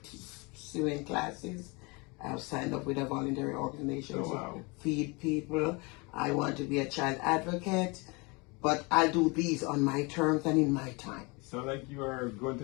Sewing classes. I've signed up with a voluntary organization to feed people. I want to be a child advocate. But I'll do these on my terms and in my time. Sound like you are going to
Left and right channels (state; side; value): quieter; right; 28.1 dB